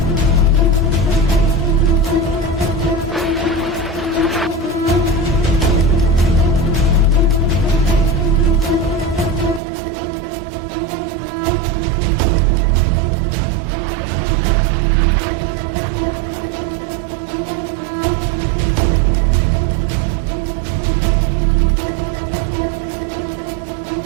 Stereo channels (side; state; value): left; drops out; at 9.6 s